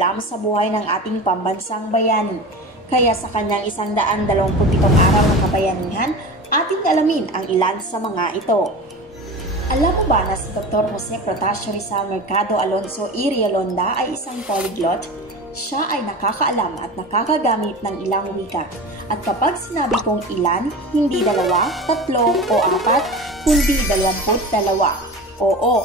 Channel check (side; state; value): both; normal; correlation 0.31